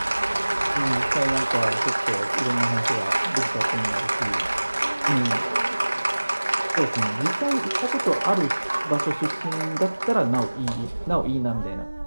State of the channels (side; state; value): both; inverted; correlation -1.00